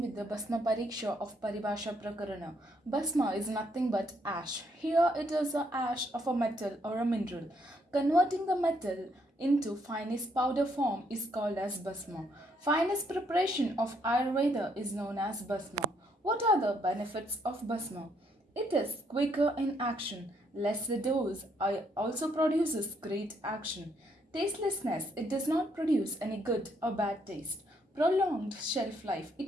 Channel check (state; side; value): normal; both; correlation 0.72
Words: with the Bhasma Pariksha of Paribhasha Prakarana. Bhasma is nothing but ash. Here it is a ash of a metal or a mineral. Converting the metal into finest powder form is called as Bhasma. Finest preparation of Ayurveda is known as Bhasma. What are the benefits of Bhasma? It is quicker in action, less the dose, also produces great action. Tastelessness, it does not produce any good or bad taste. Prolonged shelf life,